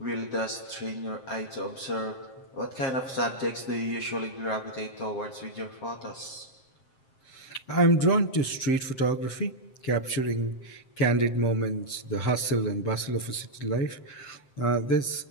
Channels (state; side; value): late; right; 7.6 ms